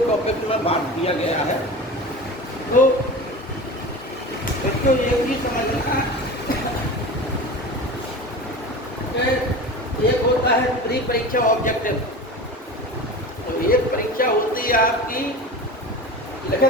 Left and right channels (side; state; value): both; normal; correlation 0.32